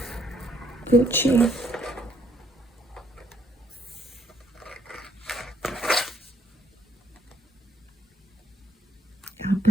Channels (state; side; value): normal; both; correlation 0.69